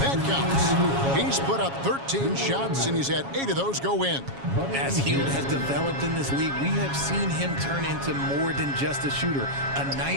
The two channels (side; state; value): left; late; 7.3 ms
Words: counts. He's put up 13 shots, and he's had 8 of those go in. As Hield has developed in this league, we have seen him turn into more than just a shooter. A